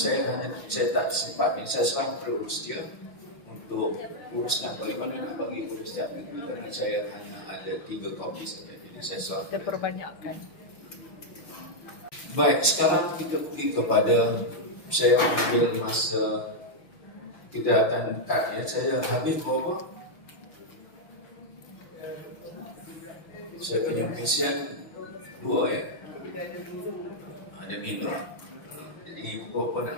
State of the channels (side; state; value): right; late; 5.7 ms